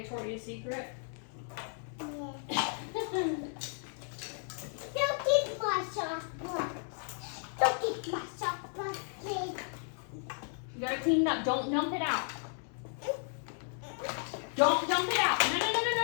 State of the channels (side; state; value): right; silent; 55 dB below the other